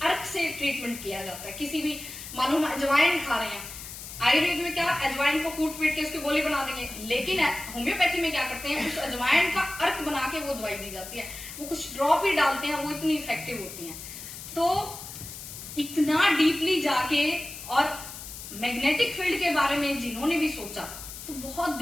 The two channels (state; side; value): noise; left; hiss, 11 dB below the sound